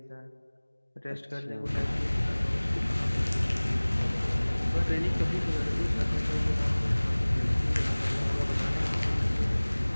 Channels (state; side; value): inverted; both; correlation -1.00